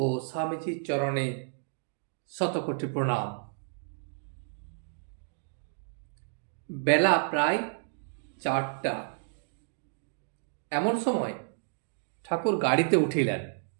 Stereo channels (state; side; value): silent; left; digital silence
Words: স্বামীজির চরণে শতকোটি প্রণাম। বেলা প্রায় 4টা। এমন সময় ঠাকুর গাড়িতে উঠিলেন।